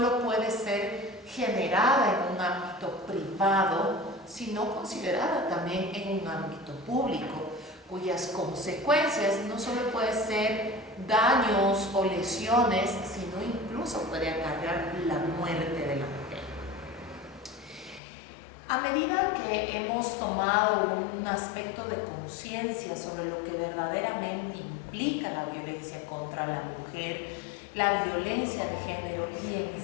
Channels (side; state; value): right; drops out; at 18.0 s